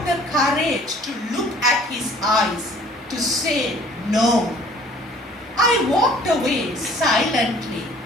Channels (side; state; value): both; normal; correlation 0.53